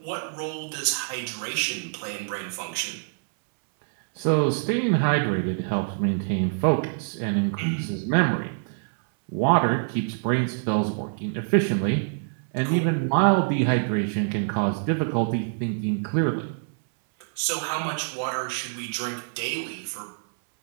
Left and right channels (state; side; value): silent; left; 61 dB below the other